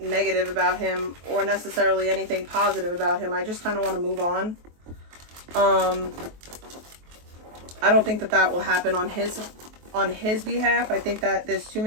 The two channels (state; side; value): late; left; 23 ms